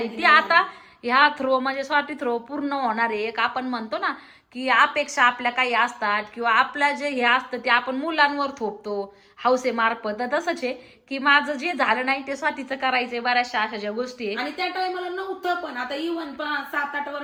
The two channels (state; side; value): identical; both; correlation 1.00